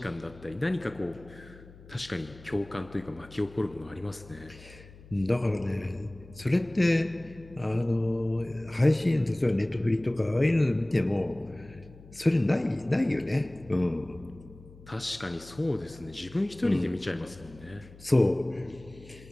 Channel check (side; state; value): left; noise; hum, 20 dB below the sound